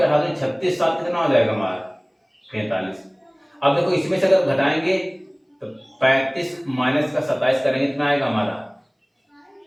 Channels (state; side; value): identical; both; correlation 1.00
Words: 18 में 36 7 कितना हो जाएगा हमारा 45। अब देखो इसमें से अगर घटाएंगे तो 35 माइनस का 27 करेंगे कितना आएगा हमारा